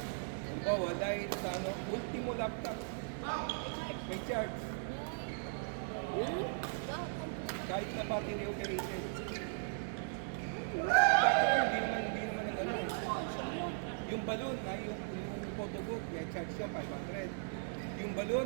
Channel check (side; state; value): left; silent; digital silence